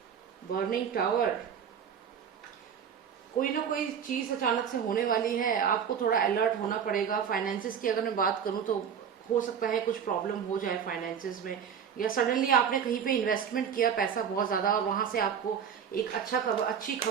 burning tower, कोई ना कोई चीज अचानक से होने वाली है, आपको थोड़ा अलर्ट होना पड़ेगा। फाइनेंसेस की अगर मैं बात करूं तो हो सकता है कुछ प्रॉब्लम हो जाए फाइनेंसेस में, या सडनली आपने कहीं पे इन्वेस्टमेंट किया पैसा बहुत ज्यादा, और वहां से आपको एक अच्छी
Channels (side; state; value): left; quieter; 7.7 dB